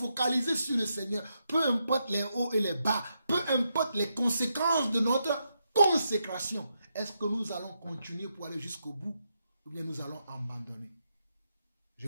sur le Seigneur. Peu importe les hauts et les bas, peu importe les conséquences de notre consécration. Est-ce que nous allons continuer pour aller jusqu'au bout ou bien nous allons abandonner? Je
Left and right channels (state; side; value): inverted; both; correlation -0.82